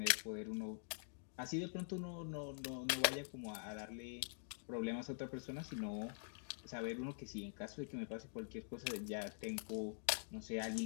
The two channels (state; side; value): silent; right; digital silence